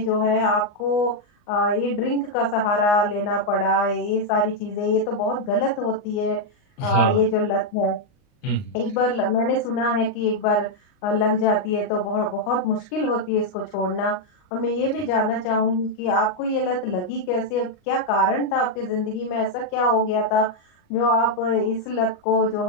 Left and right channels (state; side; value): late; right; 39 ms